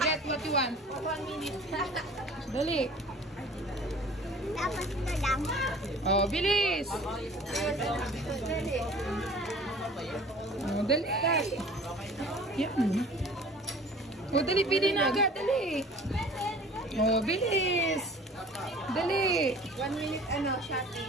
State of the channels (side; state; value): both; normal; correlation 0.46